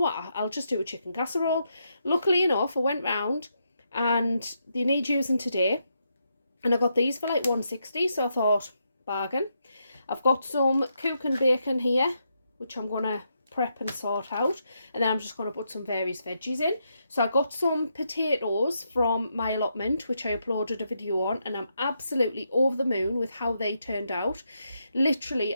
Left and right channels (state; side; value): inverted; both; correlation -0.81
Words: I'll just do a chicken casserole. Luckily enough, I went round and they need using today, and I got these for like 160, so I thought, bargain. I've got some cook and bacon here, which I'm going to prep and sort out, and then I'm just going to put some various veggies in. So I got some potatoes from my allotment, which I uploaded a video on, and I'm absolutely over the moon with how they turned out. Literally,